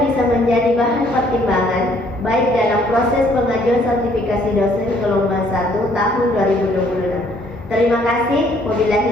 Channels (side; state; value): both; normal; correlation 0.63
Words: bisa menjadi bahan pertimbangan baik dalam proses pengajuan sertifikasi dosen gelombang 1 tahun 2026 Terima kasih.